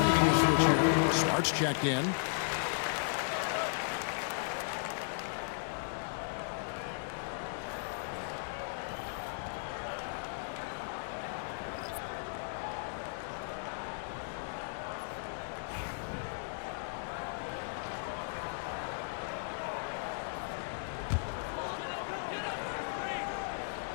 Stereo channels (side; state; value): right; silent; digital silence